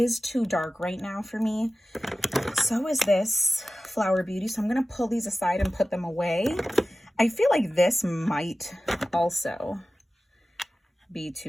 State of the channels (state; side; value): normal; both; correlation 0.95